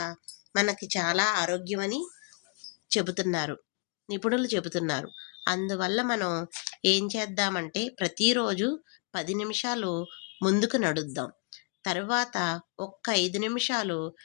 మనకి చాలా ఆరోగ్యమని నిపుణులు చెబుతున్నారు. అందువల్ల మనం ఏం చేద్దామంటే ప్రతిరోజు 10 నిమిషాలు ముందుకు నడుద్దాం. తరువాత ఒక్క 5 నిమిషాలు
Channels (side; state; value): right; quieter; 36.8 dB